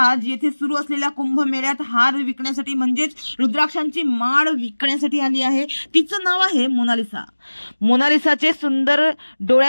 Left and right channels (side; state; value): both; inverted; correlation -1.00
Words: येथे सुरू असलेल्या कुंभमेळ्यात हार विकण्यासाठी म्हणजेच रुद्राक्षांची माळ विकण्यासाठी आली आहे। तिचं नाव आहे मोनालिसा। मोनालिसाचे सुंदर